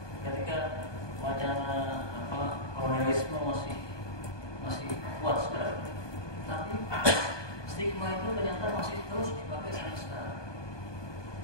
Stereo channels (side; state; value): right; late; 1.2 ms